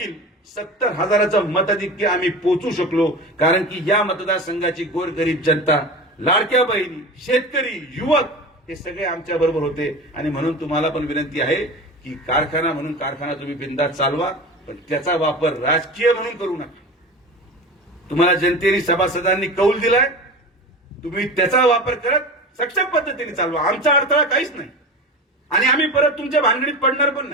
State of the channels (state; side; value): normal; both; correlation 0.30